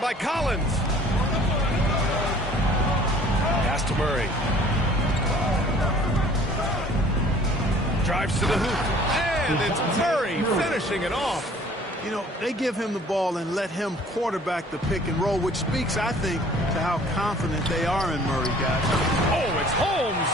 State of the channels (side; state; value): both; normal; correlation 0.53